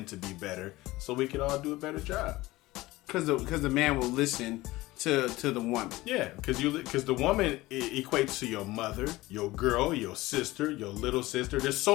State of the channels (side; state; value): right; quieter; 19.0 dB